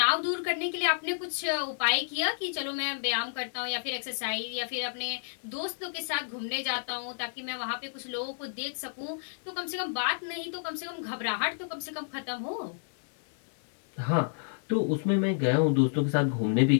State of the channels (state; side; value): silent; right; digital silence